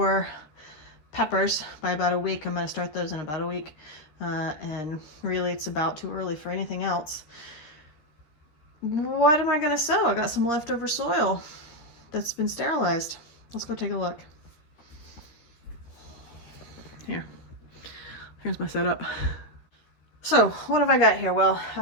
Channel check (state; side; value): late; right; 13 ms